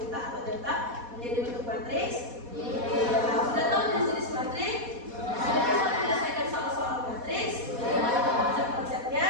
atau data menjadi bentuk matriks? Sudah tahu jenis-jenis matriks? Sudah bisa menyelesaikan soal-soal matriks? Konsep-konsepnya?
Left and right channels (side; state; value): left; late; 4.2 ms